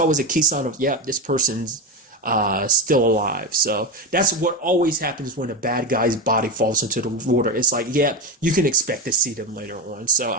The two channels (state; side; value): normal; both; correlation 0.16